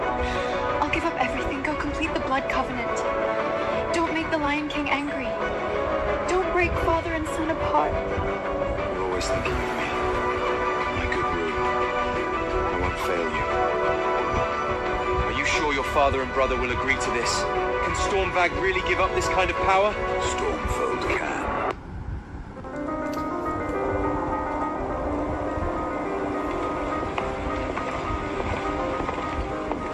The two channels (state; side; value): identical; both; correlation 1.00